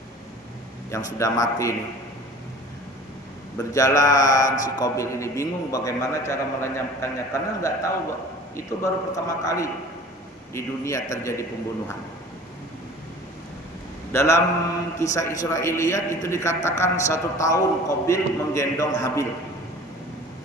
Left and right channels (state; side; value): normal; both; correlation 0.44